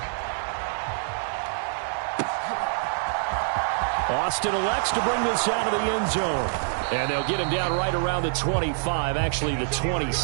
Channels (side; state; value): left; silent; digital silence